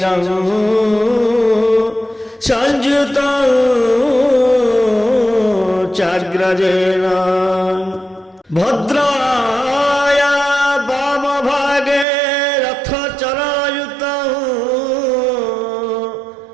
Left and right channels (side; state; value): left; drops out; at 12.1 s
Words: সংযুতং চাগ্রজেন ভদ্রায়া বামভাগে রথচরযুতং